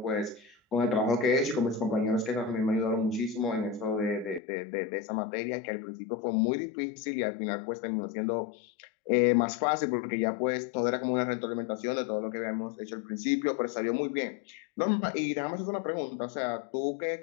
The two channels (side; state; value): right; drops out; at 4.4 s